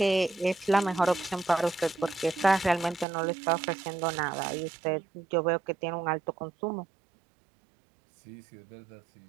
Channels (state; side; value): drops out; left; at 3.1 s